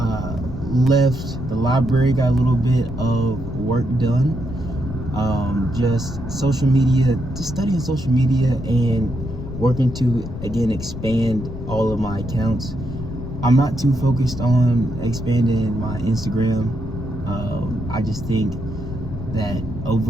the library, got a little bit of work done. Just social media, just studying social media and working to, again, expand all of my accounts. I'm not too focused on expanding my Instagram. I just think that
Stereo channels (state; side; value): noise; left; rumble, 9 dB below the sound